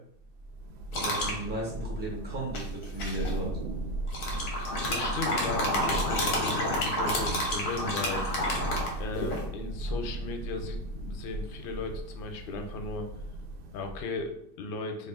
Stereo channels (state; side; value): late; right; 2.6 ms